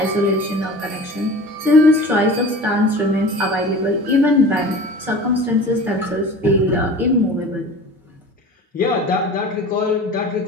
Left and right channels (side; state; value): both; normal; correlation 0.39